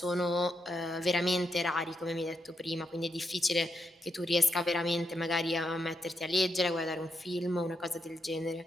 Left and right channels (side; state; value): both; normal; correlation 0.82